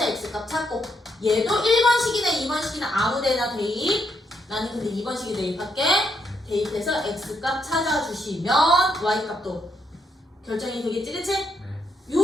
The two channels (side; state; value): both; normal; correlation 0.77